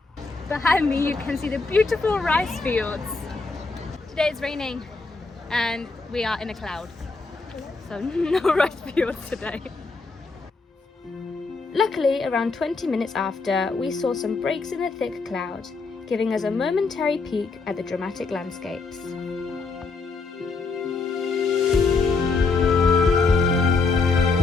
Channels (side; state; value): right; quieter; 4.1 dB